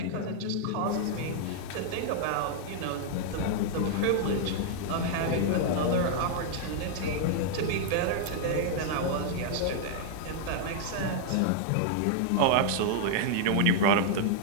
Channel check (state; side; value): different; both; correlation -0.01